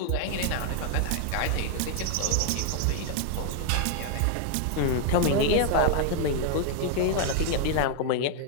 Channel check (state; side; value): different; both; correlation 0.00